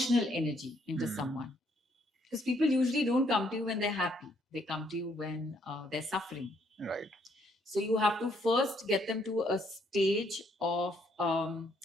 energy into someone. Because people usually don't come to you when they're happy. They come to you when they're suffering. Right. So you have to first get them to a stage of,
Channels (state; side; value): normal; both; correlation 0.70